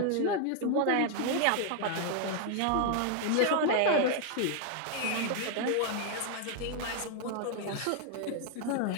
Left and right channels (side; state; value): both; different; correlation 0.00